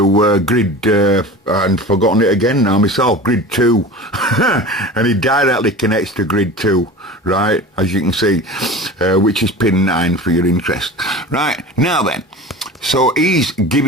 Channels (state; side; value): normal; both; correlation 0.35